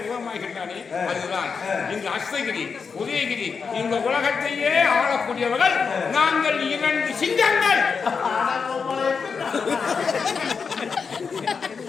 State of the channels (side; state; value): right; quieter; 5.6 dB